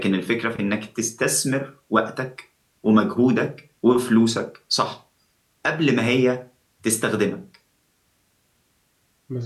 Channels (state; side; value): identical; both; correlation 1.00